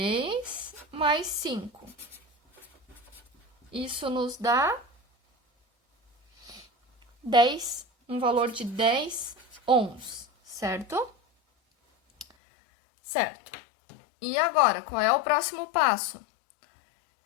mais 5. Isso nos dá 10, um valor de 10 ohms, certo? Certo. E agora, qual é o próximo passo?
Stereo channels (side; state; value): right; drops out; at 12.2 s